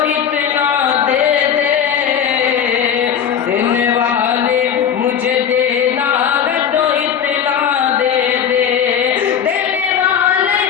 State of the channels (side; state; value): right; quieter; 8.3 dB